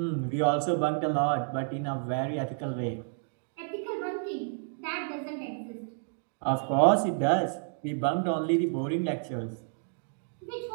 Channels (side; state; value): left; silent; digital silence